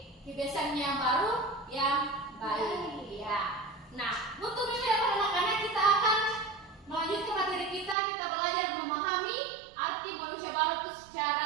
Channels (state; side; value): drops out; left; at 8.0 s